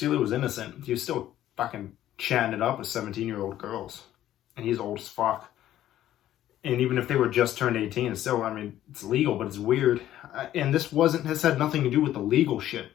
was innocent, he was still fucking chatting it up with 17-year-old girls. And he's old as fuck. And even if they were just turned 18, it's still, I mean, it's legal, but it's weird. And this has had nothing to do with the legal shit.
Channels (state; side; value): quieter; right; 12.7 dB